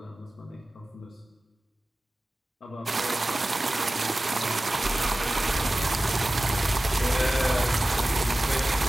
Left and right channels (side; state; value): both; normal; correlation 0.96